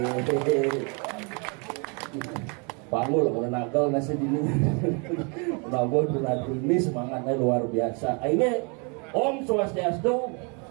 Panggul mau nagal nasi dini. Penabuh penabuh ini semangatnya luar biasa. Ini Om Swastiastu.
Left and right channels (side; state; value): left; quieter; 34.4 dB